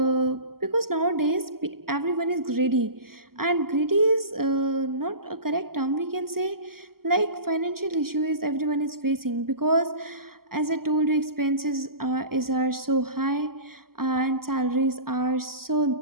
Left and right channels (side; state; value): left; late; 0.93 ms